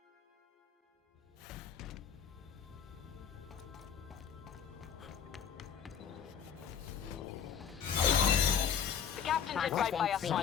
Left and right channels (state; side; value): quieter; right; 7.9 dB